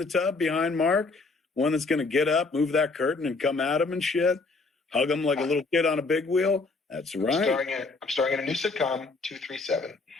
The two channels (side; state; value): right; quieter; 3.7 dB